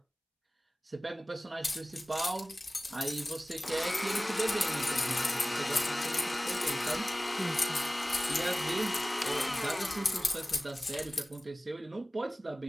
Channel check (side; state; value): both; normal; correlation 0.97